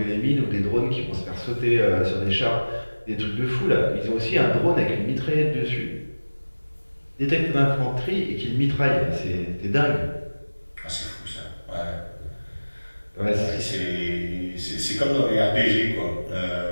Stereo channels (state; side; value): inverted; both; correlation -1.00